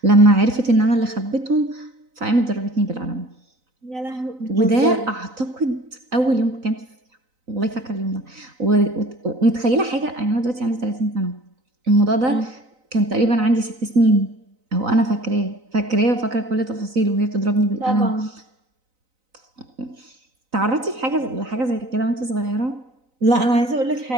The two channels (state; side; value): late; left; 3.9 ms